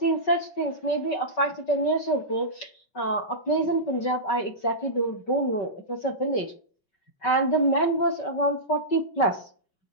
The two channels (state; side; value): late; right; 5.3 ms